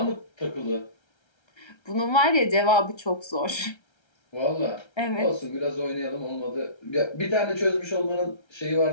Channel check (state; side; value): late; right; 1.3 ms